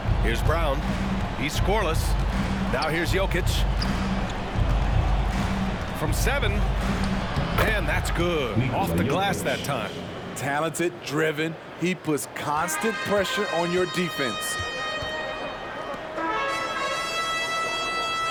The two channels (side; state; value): both; identical; correlation 1.00